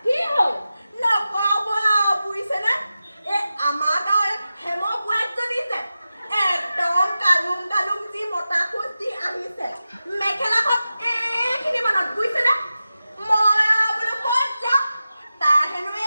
কি হ'ল নকব বুজিছেনে এই আমাৰ গাঁৱৰ হেম বোৱাৰীজনী যে একদম কালুং কালুং যি মতা খোজ দি আহিছে মেখেলাখন এইখিনি মানত বুজিছেনে মই বোলো ক'ত যাম তাৰ হেনো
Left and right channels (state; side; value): inverted; both; correlation -0.93